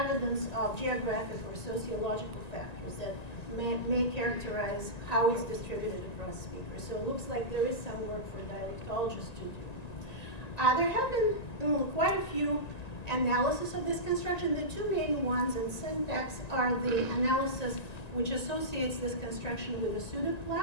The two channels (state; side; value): late; right; 1.9 ms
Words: of geographic or sociological factors that may characterize how it's distributed across speakers. So it looks like there is some work for dialectologists to do. There have been quite a few analysis of this construction. The 2 main ones in syntax are the analysis which associates this construction with a